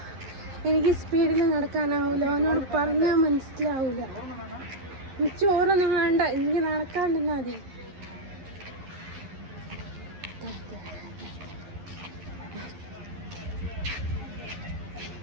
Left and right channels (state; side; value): late; left; 11 ms